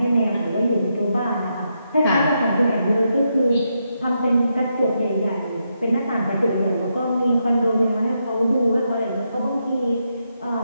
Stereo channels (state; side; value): inverted; both; correlation -0.82